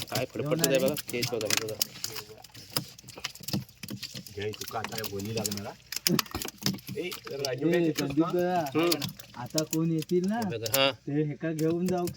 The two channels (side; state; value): both; identical; correlation 1.00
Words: काय फडफडत आहे बघा तेच बघा हे बघा घ्याय तू का काय बोली लागणार. आता कोण येतील ना हे बघा हा ते हेका घेऊन जाऊ